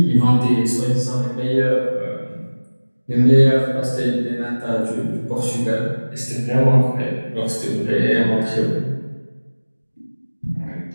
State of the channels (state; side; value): inverted; both; correlation -1.00